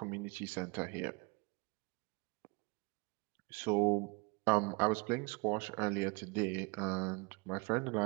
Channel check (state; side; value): quieter; left; 28.8 dB